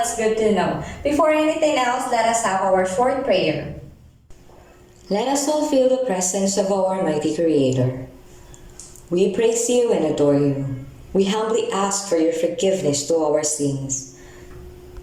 good to know. Before anything else, let us have our short prayer. Let us all feel the presence of our mighty Creator. We praise you and adore you. We humbly ask for your forgiveness to our sins.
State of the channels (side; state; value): both; identical; correlation 1.00